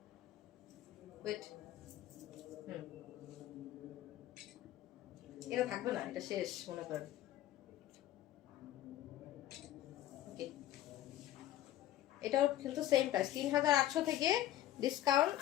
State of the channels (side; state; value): right; quieter; 13.4 dB